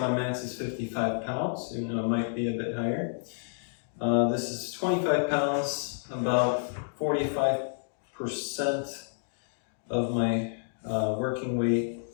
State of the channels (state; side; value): silent; right; digital silence